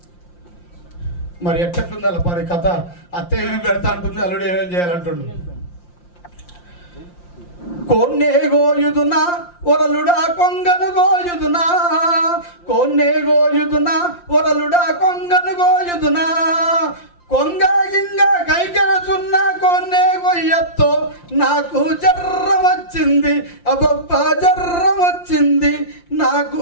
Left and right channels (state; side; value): late; right; 5.7 ms